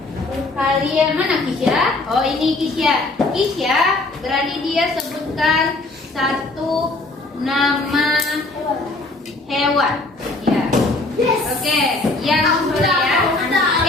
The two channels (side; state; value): right; quieter; 3.1 dB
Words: Kalian mana Kisya? Oh, ini Kisya. Kisya, berani dia sebutkan satu nama hewan. Ya. Oke, yang soleh ya.